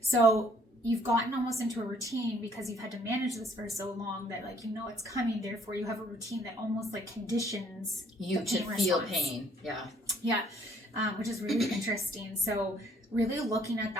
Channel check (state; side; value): normal; both; correlation 0.63